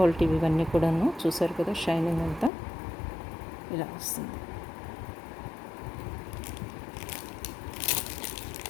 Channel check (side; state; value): right; drops out; at 2.5 s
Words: ఇవన్నీ కూడాను. చూసారు కదా షైనింగ్ అంతా ఇలా వస్తుంది.